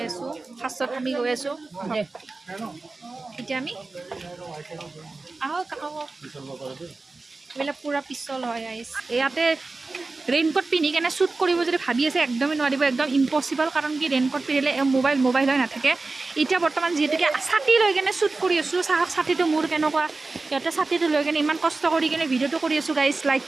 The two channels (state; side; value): quieter; left; 3.6 dB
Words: আছোঁ ফাৰ্ষ্টত আমি গৈ আছোঁ এতিয়া আমি আহক এইবিলাক পূৰা পিছল হয় আইচ ইয়াতে ৰেইনকোট পিন্ধি কেনে শ্বুট কৰিব যদি ভাবি আছে একদমেই নোৱাৰিব একদম ইম্পচিবল কাৰণ কি ৰেইনকোট পিন্ধিলে মোবাইল হৈ নাথাকে এতিয়া বৰ্তমান যিহেতুকে ছাতি লৈ কেনে শ্বুট কৰি আছোঁ চাওক ছাতিটো মোৰ কেনেকুৱা ইয়াতে ছাতিটো লৈ কেনে ইমান কষ্ট কৰি কেনে ভিডিঅ'টো কৰি আছোঁ গাইজ লাইক